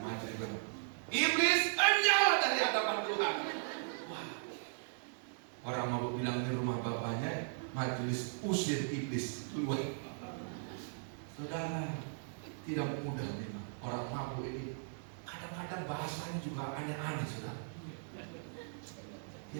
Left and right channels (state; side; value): silent; left; digital silence